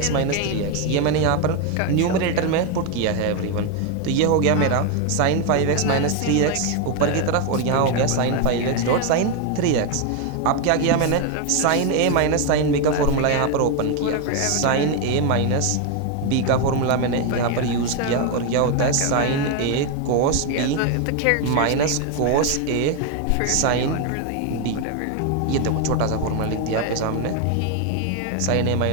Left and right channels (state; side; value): different; both; correlation 0.01